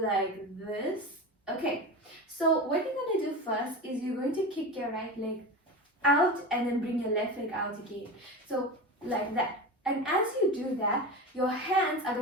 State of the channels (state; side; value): normal; both; correlation 0.26